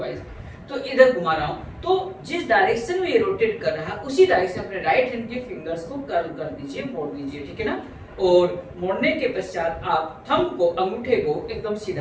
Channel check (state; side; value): identical; both; correlation 1.00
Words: तो इधर घुमा रहा हूँ, तो जिस डायरेक्शन में ये रोटेट कर रहा है उसी डायरेक्शन अपने राइट हैंड के फिंगर्स को कर्ल कर दीजिए, मोड़ दीजिए। ठीक है ना, और मोड़ने के पश्चात आप थंब को, अंगूठे को एकदम